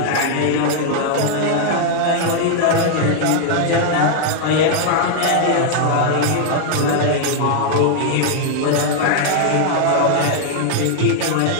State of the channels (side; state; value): both; different; correlation 0.00